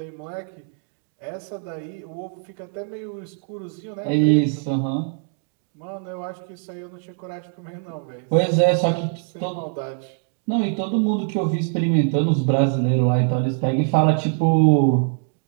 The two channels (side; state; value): left; silent; 55 dB below the other